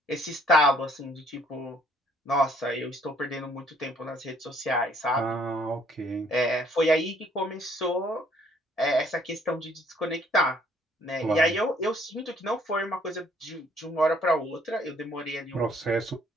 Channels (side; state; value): both; normal; correlation 0.62